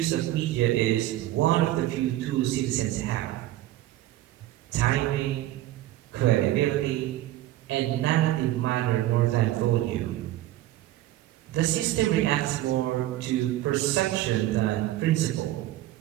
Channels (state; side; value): quieter; left; 14.8 dB